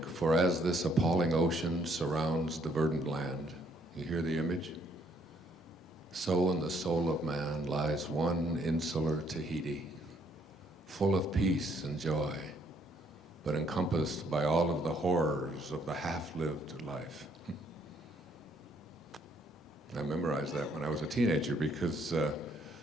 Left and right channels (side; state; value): both; normal; correlation 0.68